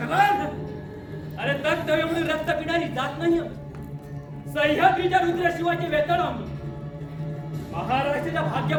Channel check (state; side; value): identical; both; correlation 1.00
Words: अरे तत्तव्यमुळे रक्त पिणारी जात नाही आम्ही. सह्याद्रीच्या रुद्रशिवाचे वेतन आम्ही, महाराष्ट्राच्या